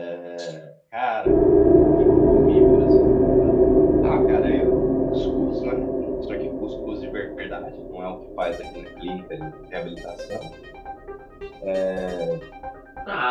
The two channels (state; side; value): identical; both; correlation 1.00